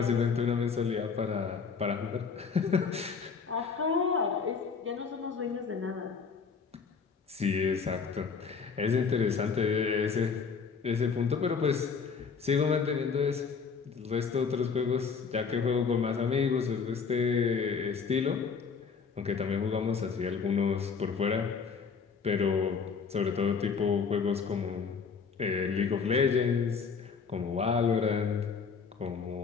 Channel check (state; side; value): quieter; right; 5.7 dB